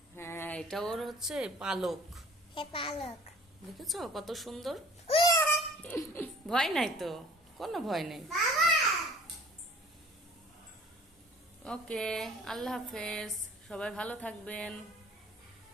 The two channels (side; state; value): both; normal; correlation 0.50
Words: হ্যাঁ, এটা ওর হচ্ছে পালক। দেখেছো কত সুন্দর? ভয় নাই তো, কোনো ভয় নেই। ওকে, আল্লাহ হাফেজ, সবাই ভালো থাকবেন।